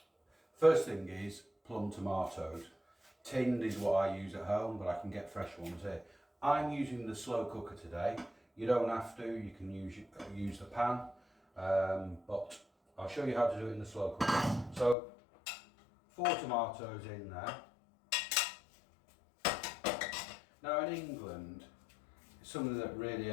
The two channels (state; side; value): drops out; right; at 15.0 s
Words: first thing is plum tomatoes. Tinned is what I use at home, but I can get fresh ones here. I'm using the slow cooker today. You don't have to, you can use the pan, but I'll show you how to do it in the slow cooker. So, 4 tomatoes in there. Now in England, something that really